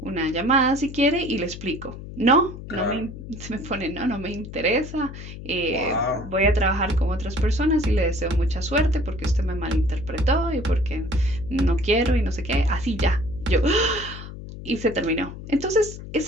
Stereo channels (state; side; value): noise; left; hum, 12 dB below the sound